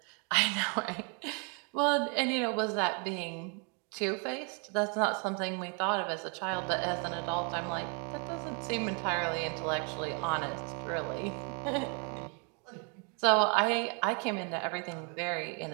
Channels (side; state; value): left; quieter; 36.5 dB